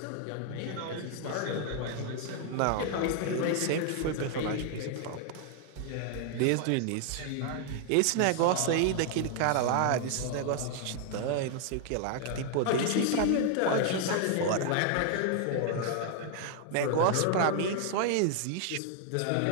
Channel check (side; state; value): both; different; correlation 0.00